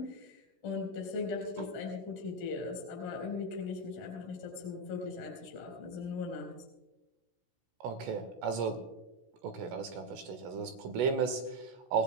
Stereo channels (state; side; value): late; left; 16 ms